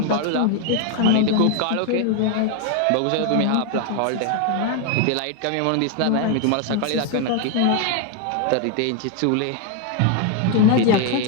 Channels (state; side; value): different; both; correlation 0.01